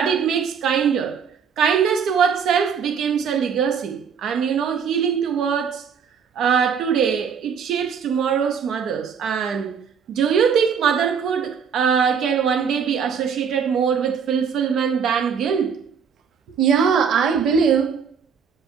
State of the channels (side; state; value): left; quieter; 6.8 dB